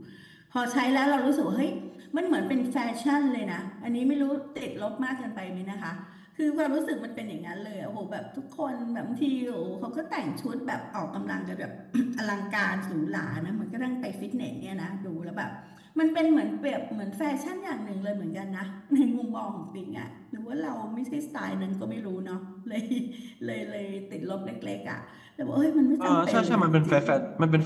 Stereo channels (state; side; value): identical; both; correlation 1.00